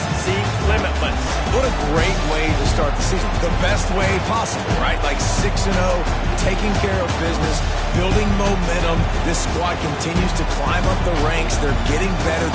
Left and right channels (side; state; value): both; identical; correlation 1.00